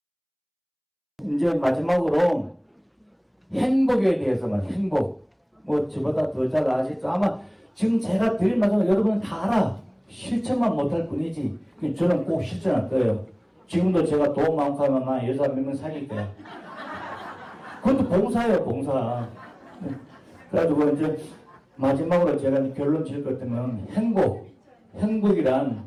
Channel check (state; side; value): identical; both; correlation 1.00